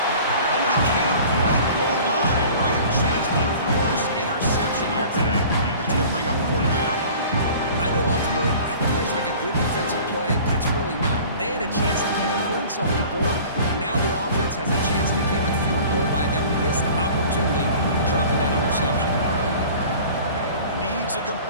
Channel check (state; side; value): inverted; both; correlation -0.45